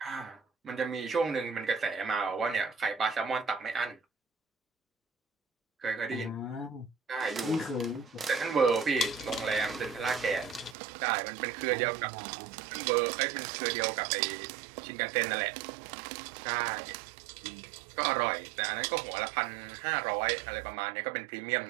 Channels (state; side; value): drops out; left; at 10.8 s